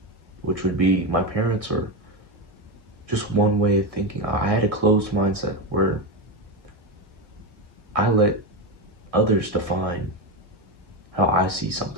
which would be my parents, or just one way of thinking. I had a closed mindset where I let others define how I see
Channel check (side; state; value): left; late; 1.6 ms